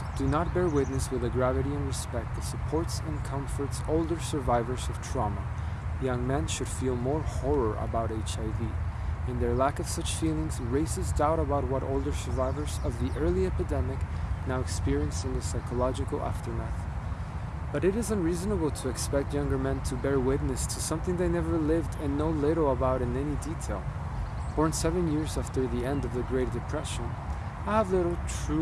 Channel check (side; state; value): both; identical; correlation 1.00